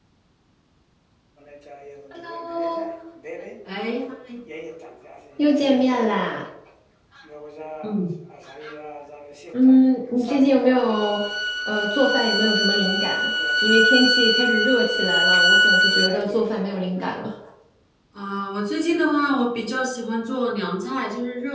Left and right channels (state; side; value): identical; both; correlation 1.00